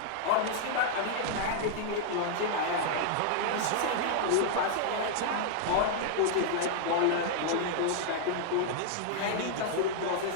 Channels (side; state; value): both; different; correlation -0.01